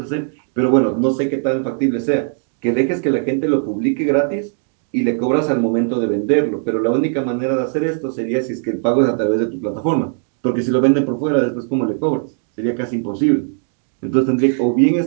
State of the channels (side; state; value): left; silent; 61 dB below the other